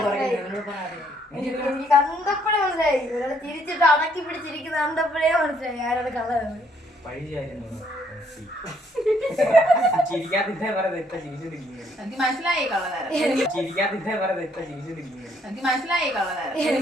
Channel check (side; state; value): both; normal; correlation 0.68